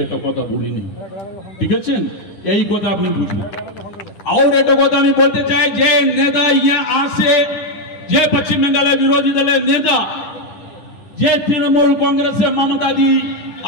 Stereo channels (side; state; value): right; late; 10 ms